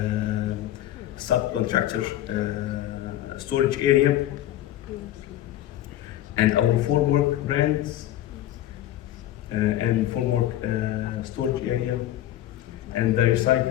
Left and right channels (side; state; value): right; quieter; 13.2 dB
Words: subcontractor storage area, and our formwork brands and formwork storage area, and the